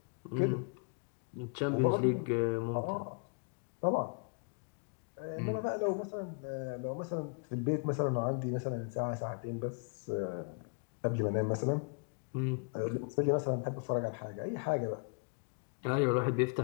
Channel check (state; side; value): quieter; right; 37.2 dB